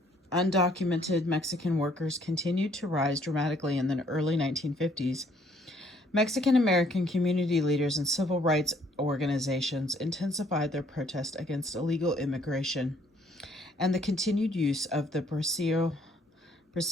undocumented Mexican workers continued to rise dramatically in the early 1950s, Mexican American community leaders and civil rights organizations intensified their protest against illegal immigration and the continued use of the bracero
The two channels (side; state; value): both; normal; correlation 0.64